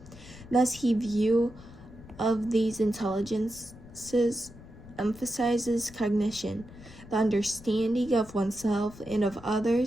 Thus, his view of these intelligences emphasizes cognition, the understanding of oneself and of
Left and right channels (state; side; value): noise; left; rumble, 18 dB below the sound